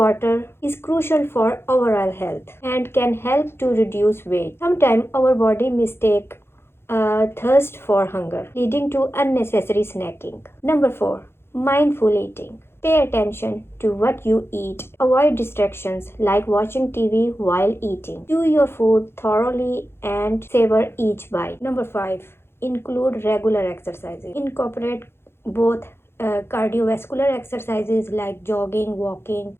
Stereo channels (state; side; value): late; right; 0.12 ms